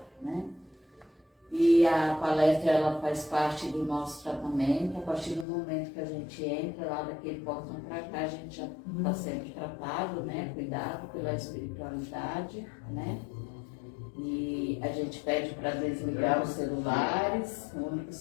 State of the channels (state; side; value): drops out; right; at 5.5 s